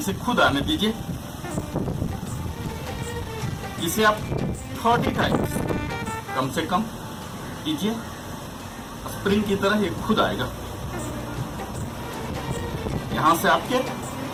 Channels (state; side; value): identical; both; correlation 1.00